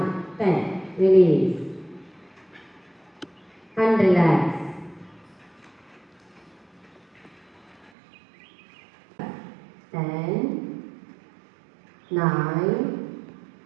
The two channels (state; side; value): drops out; left; at 7.9 s